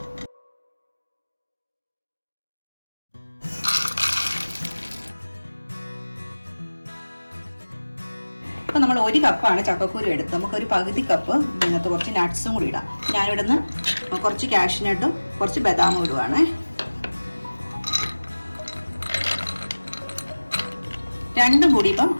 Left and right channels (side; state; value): both; inverted; correlation -1.00